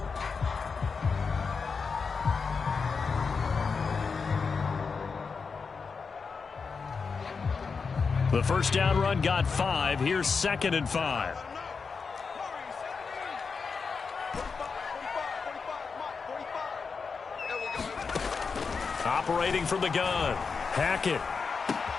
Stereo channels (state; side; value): quieter; right; 5.2 dB